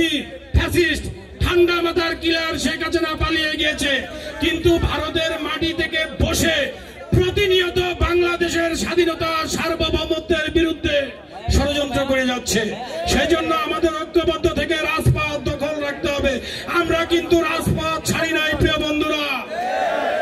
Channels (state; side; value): identical; both; correlation 1.00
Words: ফ্যাসিস্ট ঠান্ডা মাথার কিলার শেখ হাসিনা পালিয়ে গিয়েছে, কিন্তু ভারতের মাটি থেকে বসে প্রতিনিয়ত বাংলাদেশের স্বাধীনতা সার্বভৌমত্বের বিরুদ্ধে ষড়যন্ত্র করে যাচ্ছে। সেই জন্য আমাদের ঐক্যবদ্ধ থেকে রাজপথ দখল রাখতে হবে। আমরা কিন্তু রাজপথ ছাড়ি নাই প্রিয় বন্ধুরা,